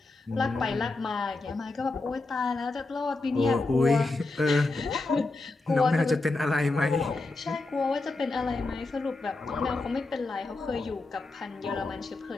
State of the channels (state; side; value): quieter; right; 3.3 dB